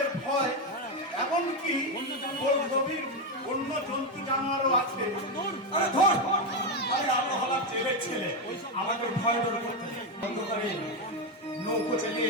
ভয়, এমনকি গভীর অন্য জন্তু জানোয়ারও আছে। আরে ধর, আরে আমরা হলাম জেলের ছেলে, আমাদের ভয় ডর করতে নেই। অন্ধকারে নৌকো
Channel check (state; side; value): normal; both; correlation 0.08